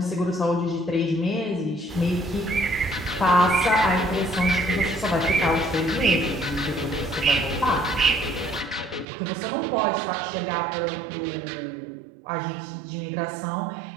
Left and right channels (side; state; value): left; drops out; at 9.1 s